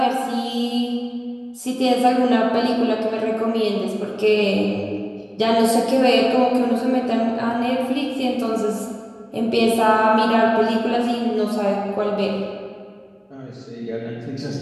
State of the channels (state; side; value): identical; both; correlation 1.00